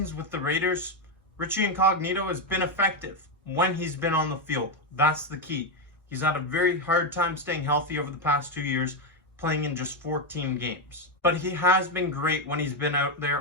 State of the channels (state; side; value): normal; both; correlation 0.06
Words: with the Raiders, Richie Incognito has been effective when he's been on the field. That's the key. He's had a very hard time staying healthy over the past 2 years, playing in just 14 games. But he has been great when he's been out